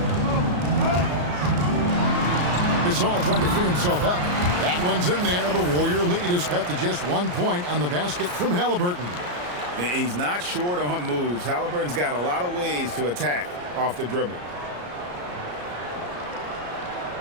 Gasol trying to free himself up. That one's in there. The Warrior lead is cut to just 1 point on the basket from Halliburton. He's not short on moves. Halliburton's got a lot of ways to attack off the dribble.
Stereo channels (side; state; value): left; late; 34 ms